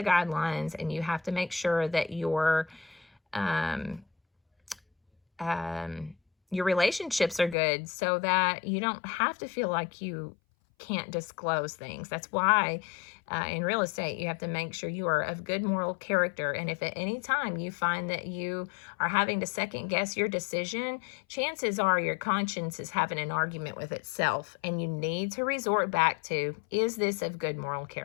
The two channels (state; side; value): drops out; right; at 7.6 s